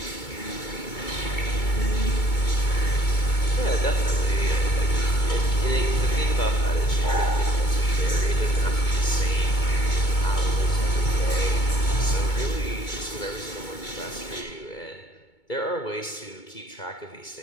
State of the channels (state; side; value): late; right; 2.2 ms